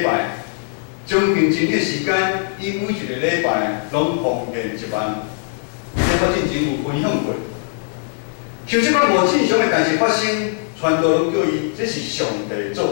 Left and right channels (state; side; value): silent; right; digital silence